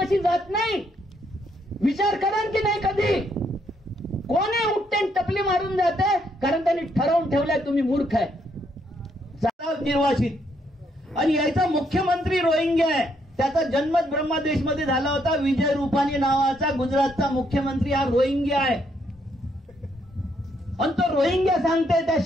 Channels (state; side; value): normal; both; correlation 0.73